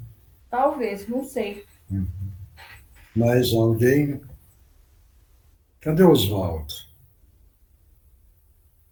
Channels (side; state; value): both; identical; correlation 1.00